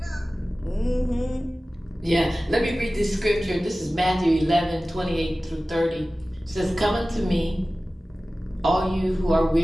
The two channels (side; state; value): both; normal; correlation 0.96